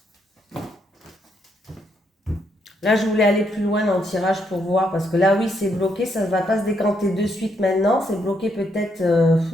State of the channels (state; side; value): normal; both; correlation 0.75